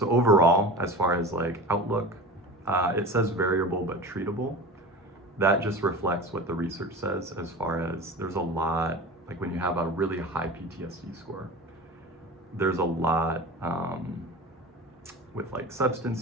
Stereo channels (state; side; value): normal; both; correlation 0.33